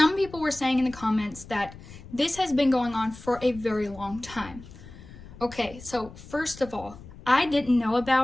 people were saying in the comments that this has been going on for a very long time. Okay, so first of all, I didn't know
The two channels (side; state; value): left; noise; rumble, 17 dB below the sound